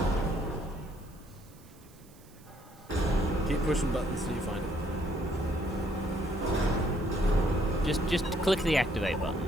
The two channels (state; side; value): noise; right; hiss, 26 dB below the sound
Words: Keep pushing buttons till you find it. Just click the activate button.